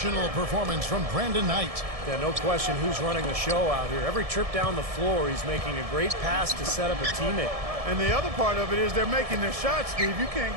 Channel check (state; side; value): late; left; 1.7 ms